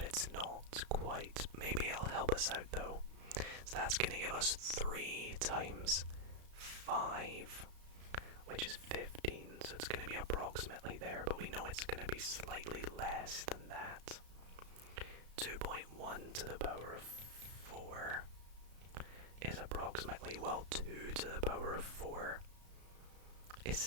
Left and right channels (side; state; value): left; late; 34 ms